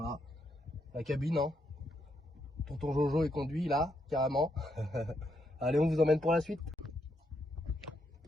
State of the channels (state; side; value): normal; both; correlation 0.78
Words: la cabine, hein. Tonton Jojo est conduit là, carrément. Allez, on vous emmène pour la suite.